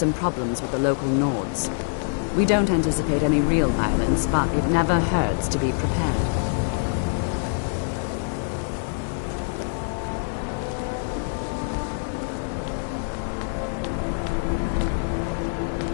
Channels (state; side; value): silent; right; 62 dB below the other